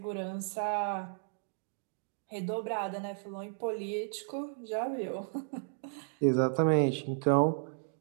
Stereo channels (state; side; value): silent; left; digital silence